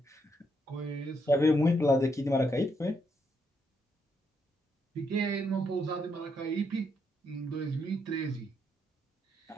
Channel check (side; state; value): both; normal; correlation 0.77